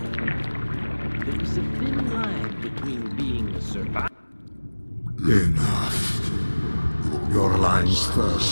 There is a thin line between being a survivor. Enough. Your alliance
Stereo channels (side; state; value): both; inverted; correlation -1.00